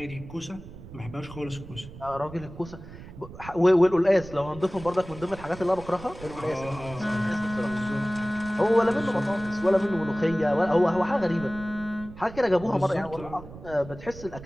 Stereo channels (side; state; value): right; noise; rumble, 15 dB below the sound